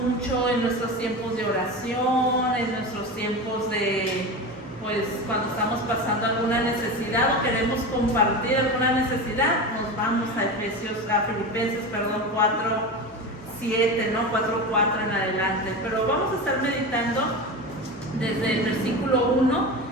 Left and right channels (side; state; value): both; normal; correlation 0.25